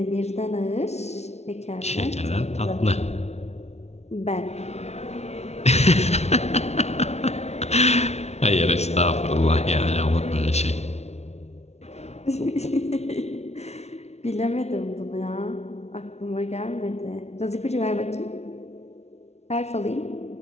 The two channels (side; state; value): right; late; 0.31 ms